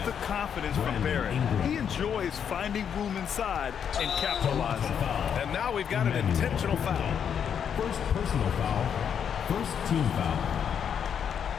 the confidence from Barrett. He enjoys finding room inside and capitalizing. And now we've got an intentional foul. First personal foul. First team foul.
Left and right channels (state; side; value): quieter; right; 8.0 dB